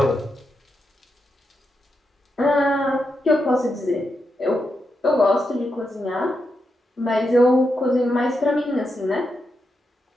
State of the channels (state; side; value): normal; both; correlation 0.85